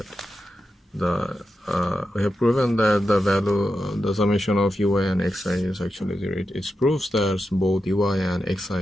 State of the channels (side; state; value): both; normal; correlation 0.89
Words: the value, the summation of ui and xi is actually 0. It proves that both ui and